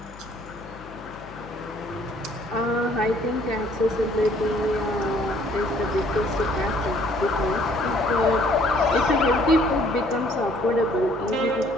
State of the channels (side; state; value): left; noise; hum, 20 dB below the sound